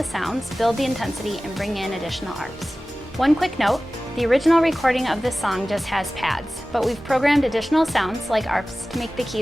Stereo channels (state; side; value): normal; both; correlation 0.97